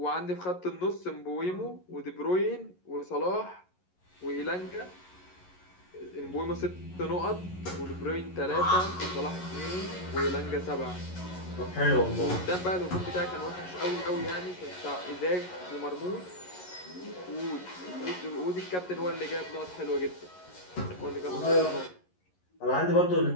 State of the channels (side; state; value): right; late; 11 ms